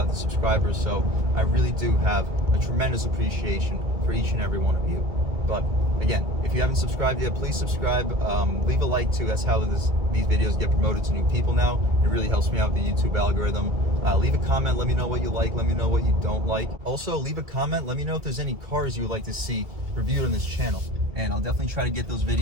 the subscribers, so I really do have a tremendous appreciation for each and every one of you. But again, if you haven't subscribed yet, please subscribe. Leave a like too. That's how these videos get promoted to new people now. It really helps me out with the YouTube algorithm. Leave a comment. Let me know what you like. Let me know what you don't like. Also, leave a comment. Let me know if there's any cars you would like to see reviewed on this channel. And I'll definitely try to get those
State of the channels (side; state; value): left; late; 2.2 ms